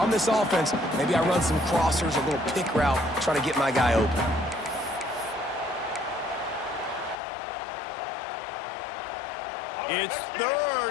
this offense, maybe I run some crossers, a little pick route, try to get my guy open. It's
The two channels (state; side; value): drops out; right; at 7.2 s